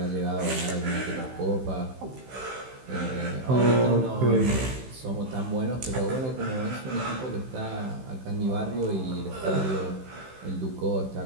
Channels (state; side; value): late; left; 16 ms